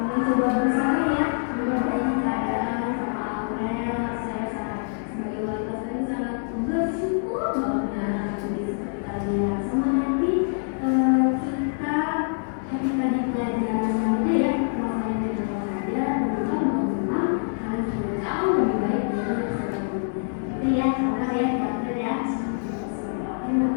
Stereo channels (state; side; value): silent; right; digital silence